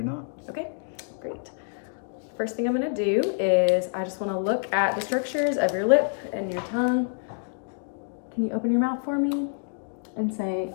not. Okay, great. First thing I'm going to do is I just want to look at the structures of your lip and your tongue. Can you open your mouth for me and say,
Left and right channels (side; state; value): right; silent; digital silence